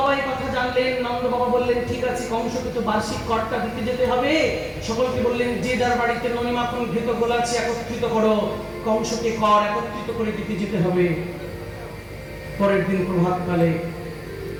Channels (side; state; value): both; identical; correlation 1.00